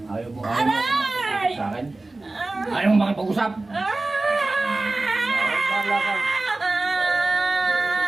Ayaw mo sa akin? Ayaw mo makipag-usap? Wala ka.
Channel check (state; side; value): quieter; left; 3.1 dB